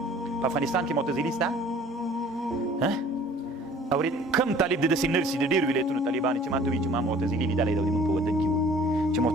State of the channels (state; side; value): normal; both; correlation 0.51